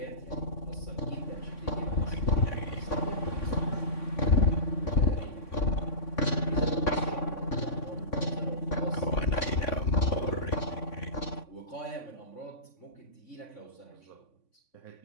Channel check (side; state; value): right; late; 3.5 ms